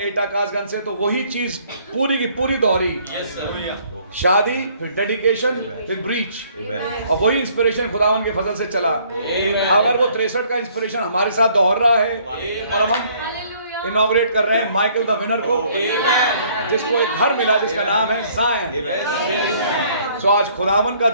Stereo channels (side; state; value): both; inverted; correlation -0.61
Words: एटा कासगंज से, तो वही चीज पूरी की पूरी दोहरी, शादी, फिर डेडिकेशन, फिर ब्रीच, और वही इंस्पिरेशन खुदावन के फजल से चला। अगर वो 63 का इंस्पिरेशन हमारे साथ दोहर रहा है, और अब हम इनॉग्रेट कर रहे हैं माइकल द विनर को, जिसको एक घर मिला जिसका नाम है ज़ायन। सो आज खुदावन का